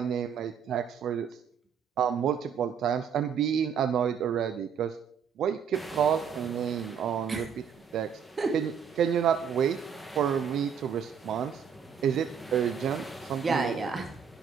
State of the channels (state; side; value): quieter; left; 7.3 dB